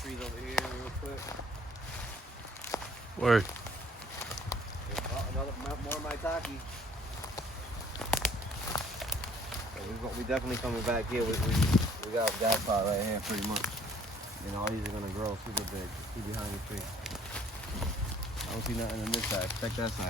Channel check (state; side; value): normal; both; correlation 0.59